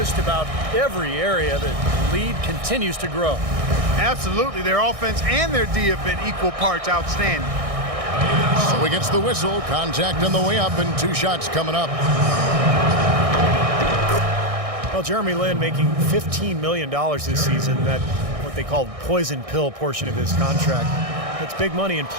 about every area. The lead continues to grow. Absolutely. Their offense and their D have been equal parts outstanding. So he gets the whistle. Contact on the way up and 2 shots coming up. Well, Jeremy Lin making $15 million this season. That what they call poison pill portion of his contract. That's big money, and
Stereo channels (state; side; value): late; left; 1.6 ms